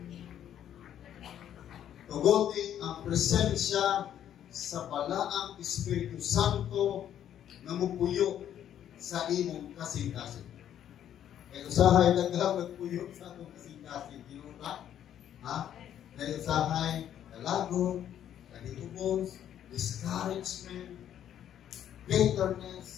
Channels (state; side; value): quieter; right; 10.4 dB